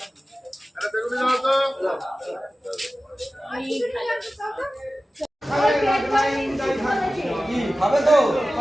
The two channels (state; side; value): normal; both; correlation 0.96